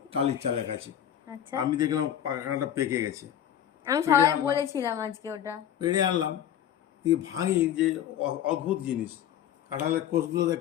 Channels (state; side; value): quieter; right; 10.3 dB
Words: টালির চালের কাছে। আচ্ছা, আমি দেখলাম কাঁঠালটা পেকে গেছে। আমি পেড়ে সবাই আনলাম, বলেছিলাম আজকে ওটা। পেড়ে আনলাম, দিয়ে ভাঙি যে অদ্ভুত জিনিস, কাঁঠালের কোষগুলো দেখ